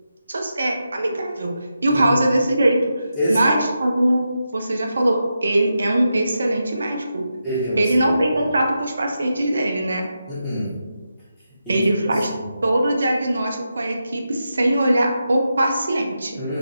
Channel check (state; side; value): inverted; both; correlation -0.87